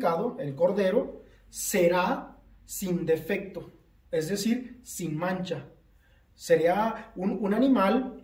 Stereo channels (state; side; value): identical; both; correlation 1.00